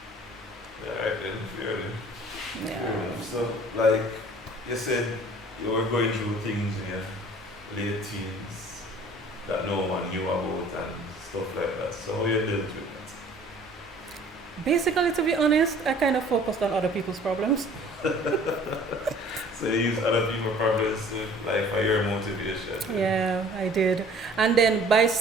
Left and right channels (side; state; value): both; normal; correlation 0.51